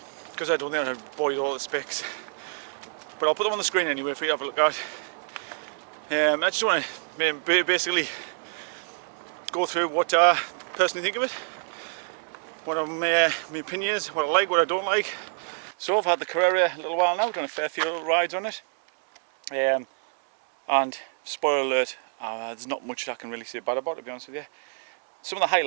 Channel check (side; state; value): left; silent; digital silence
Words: because I don't think I'll bore you with all the specs. But I'll put them on the screen anyway for you to have a look at. I just want to basically go through what I personally think of it, what my opinion is, what I like, what I don't like. So I've had the Carrera a little while now, done a fair few little rides on it, and spoiler alert, there's not much I can really say bad about it, to be honest with you. Some of the